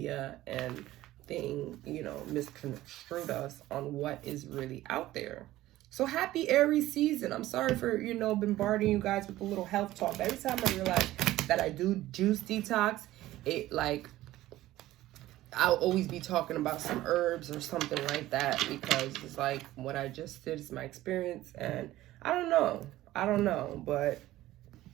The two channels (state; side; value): quieter; left; 15.7 dB